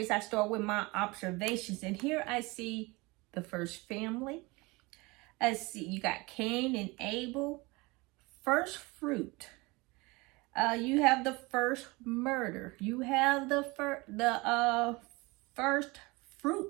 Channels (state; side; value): quieter; left; 24.5 dB